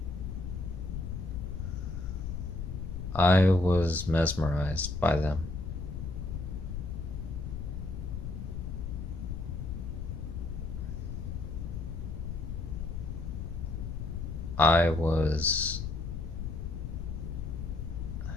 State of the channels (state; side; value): noise; left; rumble, 5 dB below the sound